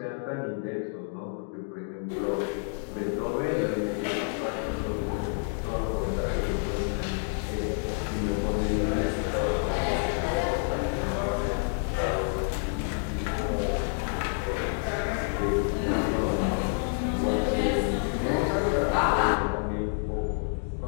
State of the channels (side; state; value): right; silent; 59 dB below the other